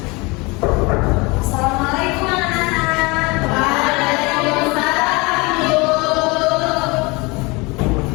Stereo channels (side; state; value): right; quieter; 25.9 dB